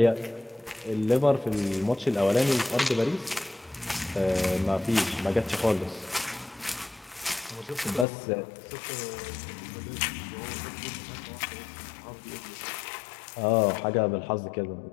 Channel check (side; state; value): right; drops out; at 8.1 s